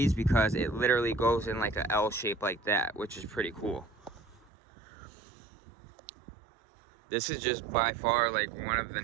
because it literally goes in like a L shape like that, which is pretty cool. This is just by far like one of the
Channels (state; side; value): drops out; left; at 4.5 s